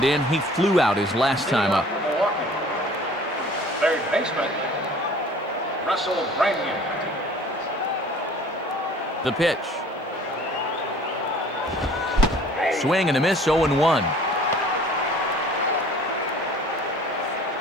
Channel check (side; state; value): both; normal; correlation 0.50